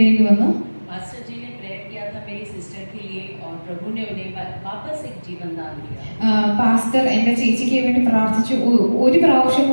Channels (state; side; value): inverted; both; correlation -1.00